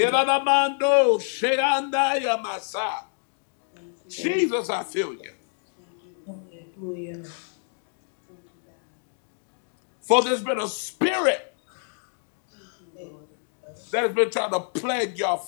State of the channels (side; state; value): right; silent; 60 dB below the other